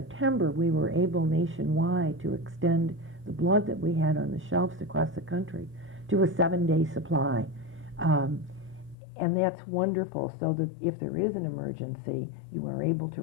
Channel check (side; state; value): right; drops out; at 9.0 s